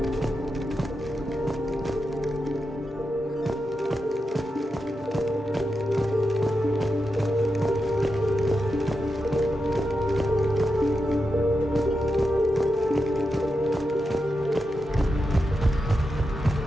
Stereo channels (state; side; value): normal; both; correlation 0.88